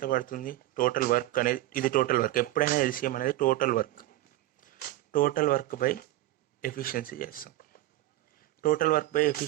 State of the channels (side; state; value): left; quieter; 16.0 dB